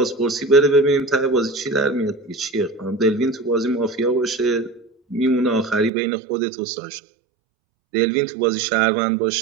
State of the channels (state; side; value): drops out; left; at 5.9 s